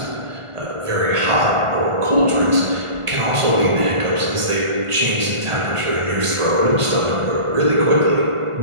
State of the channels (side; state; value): left; late; 1.5 ms